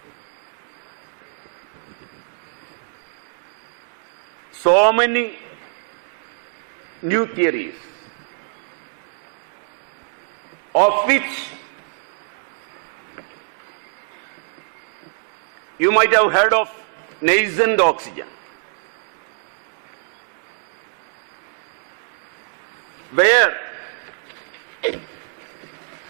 so many new theories, of which you might have heard of nascent oxygen, where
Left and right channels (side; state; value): left; silent; 60 dB below the other